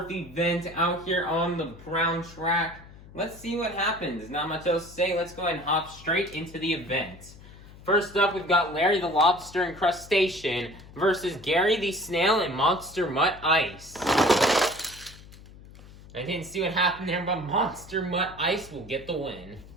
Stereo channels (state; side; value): noise; left; hum, 19 dB below the sound